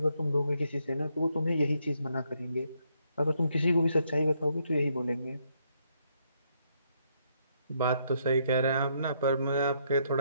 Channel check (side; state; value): both; inverted; correlation -0.74